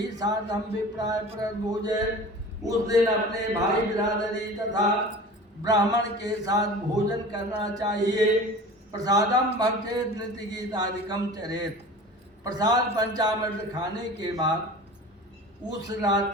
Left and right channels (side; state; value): both; normal; correlation 0.38